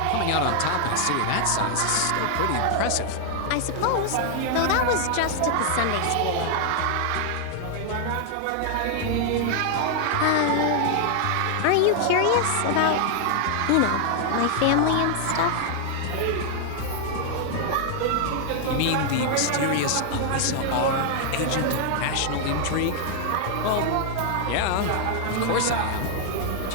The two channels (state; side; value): different; both; correlation 0.00